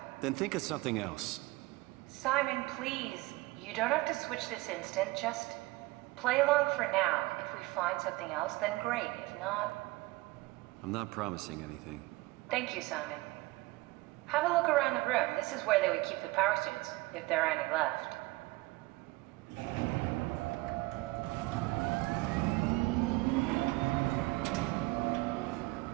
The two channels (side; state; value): left; quieter; 21.5 dB